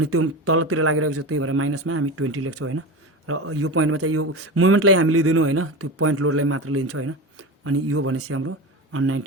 त्यो तलतिर लागिरहेको छ, त्यही भएर माइनसमा हामी 20 लेख्छौँ होइन। र यो पोइन्टमा चाहिँ यो मुभमेन्टलाई हामी लिँदैनौँ होइन, त्यो पोइन्ट लोडलाई मात्र लिन्छौँ होइन। अनि यो भनेपछि हाम्रो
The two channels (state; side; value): normal; both; correlation 0.25